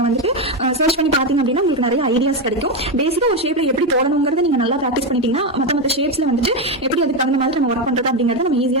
வந்துட்டு சர்ச் பண்ணி பாத்தீங்க அப்படின்னா உங்களுக்கு நிறைய ஐடியாஸ் கிடைக்கும். பேசிக்கா ஒரு ஷேப்ல எப்படி போடணுங்கிறத நீங்க நல்லா ப்ராக்டிஸ் பண்ணிட்டீங்கன்னா மற்ற ஷேப்ஸ்ல வந்துட்டு எப்படி அதுக்கு தகுந்த மாதிரி நம்ம ஒர்க் பண்றது அப்படிங்கறத நம்ம ஈஸியா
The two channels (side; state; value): both; normal; correlation 0.09